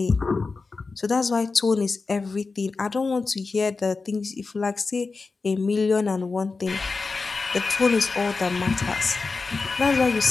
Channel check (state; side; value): quieter; right; 4.2 dB